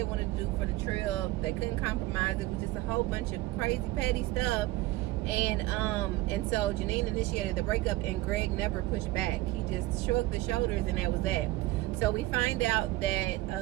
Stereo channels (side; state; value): left; quieter; 18.1 dB